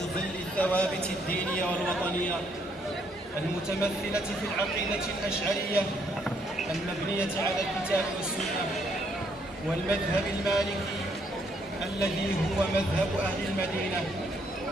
ظل الثوابت الدينية والوطنية المتمثلة في العقيدة الأشعرية المبنية على الكتاب والسنة، والمذهب المالكي الذي هو مذهب أهل المدينة،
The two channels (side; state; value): both; normal; correlation 0.70